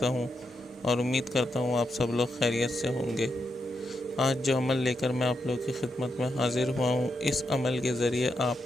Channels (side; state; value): both; normal; correlation 0.84